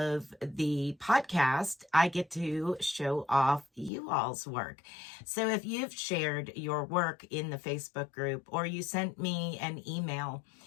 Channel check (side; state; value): right; drops out; at 3.9 s